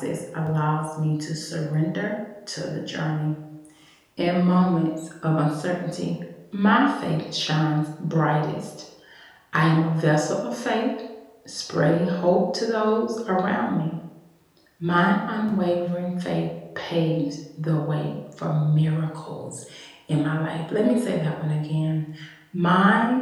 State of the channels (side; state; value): both; identical; correlation 1.00